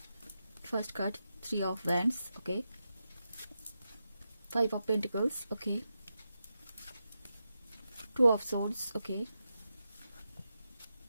First card 3 of Wands, okay, 5 of Pentacles, okay, 2 of Swords, okay,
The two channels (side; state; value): both; inverted; correlation -0.88